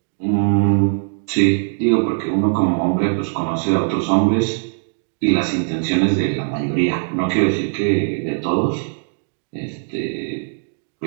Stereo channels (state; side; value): silent; left; digital silence